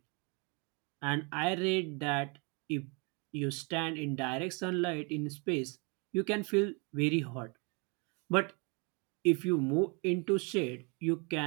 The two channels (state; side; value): quieter; left; 31.8 dB